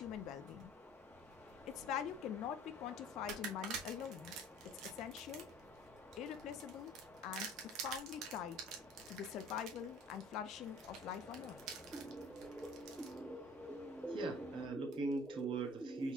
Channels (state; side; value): normal; both; correlation 0.50